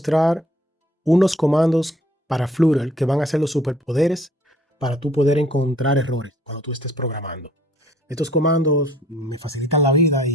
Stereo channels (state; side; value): normal; both; correlation 0.58